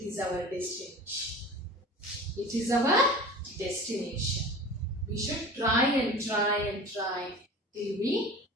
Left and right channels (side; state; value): both; normal; correlation 0.38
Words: is our destination. It is our destination. We should try and try and try till we